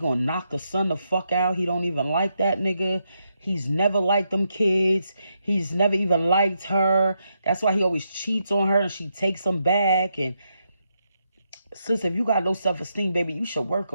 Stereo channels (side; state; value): both; inverted; correlation -0.81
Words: knock the son the fuck out. He don't even like that nigga. He's never liked them kids. He's never even liked her. That's why he always cheats on her and she takes him back. And sis, if you got low self-esteem, baby, you should work